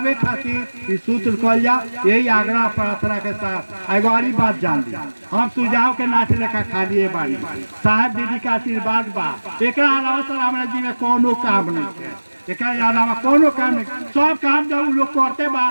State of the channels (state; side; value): inverted; both; correlation -1.00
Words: खातिर इस सूत्र कहल जा। यही आग्रह प्रार्थना के साथ एगो और बात जान ली, हम सुझाव के नाच लेखा खाली बानी, साहब दीदी के आशीर्वाद बा, एकरा अलावा सर हमरा जी में कोनो काम नहीं है, एकरा अलावा कोनो काम नहीं। सब काम जब उ लोग करते बा